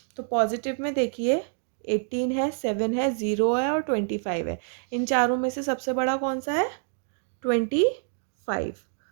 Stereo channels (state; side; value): silent; left; digital silence